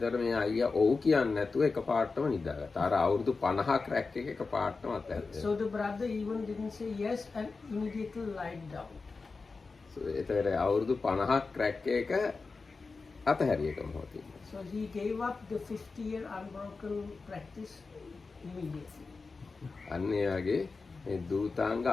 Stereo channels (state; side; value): quieter; right; 4.2 dB